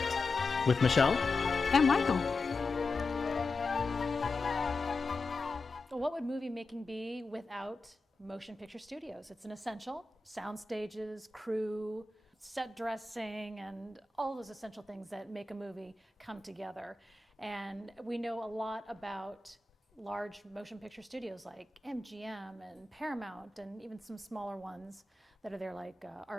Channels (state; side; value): quieter; right; 3.4 dB